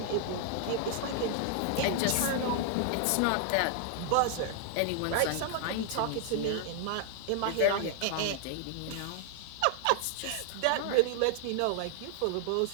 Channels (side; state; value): both; different; correlation 0.00